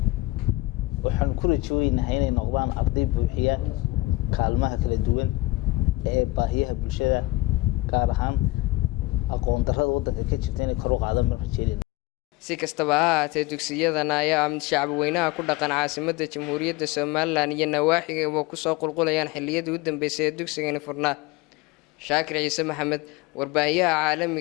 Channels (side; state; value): right; quieter; 19.7 dB